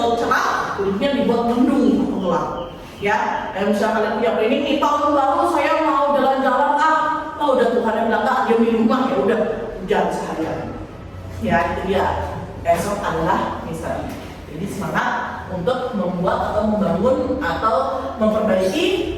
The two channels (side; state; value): both; identical; correlation 1.00